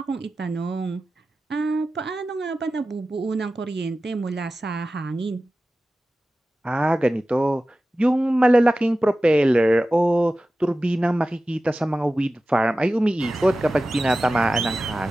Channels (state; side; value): normal; both; correlation 0.95